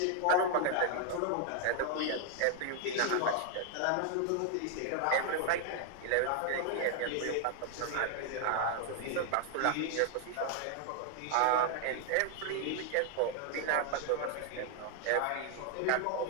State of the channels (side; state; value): both; different; correlation 0.00